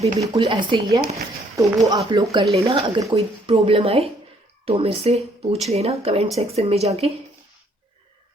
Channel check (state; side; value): normal; both; correlation 0.65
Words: बिल्कुल ऐसे ही है, तो वो आप लोग कर लेना। अगर कोई प्रॉब्लम आए तो मेरे से पूछ लेना कमेंट सेक्शन में जाके।